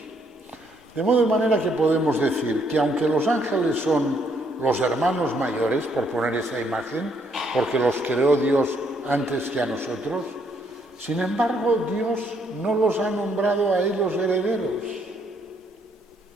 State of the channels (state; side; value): normal; both; correlation 0.71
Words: De modo de manera que podemos decir que aunque los ángeles son los hermanos mayores, por poner esa imagen, porque los creó Dios antes que a nosotros, sin embargo Dios no los ha nombrado a ellos herederos.